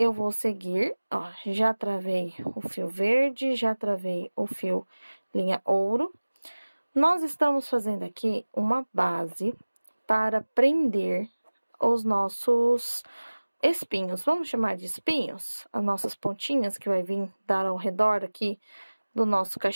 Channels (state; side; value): inverted; both; correlation -1.00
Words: vou seguir, ó, já travei o fio verde, já travei o fio linha ouro. Nós estamos fazendo aqui uma base para prender os nossos espinhos, vamos chamar de espinhos, as nossas pontinhas que vai vir dar ao redor aqui do nosso